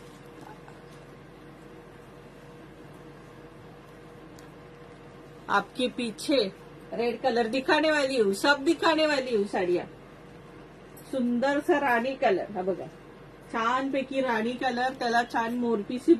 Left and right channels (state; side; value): identical; both; correlation 1.00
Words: आपके पीछे रेड कलर दिखाने वाली हूँ, सब दिखाने वाली हूँ साड़ियाँ. सुंदर सा राणी कलर. हा बघा, छानपैकी राणी कलर. त्याला छान मोरपीसी